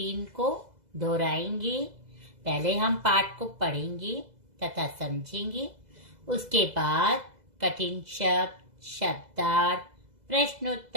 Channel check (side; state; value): left; late; 2.0 ms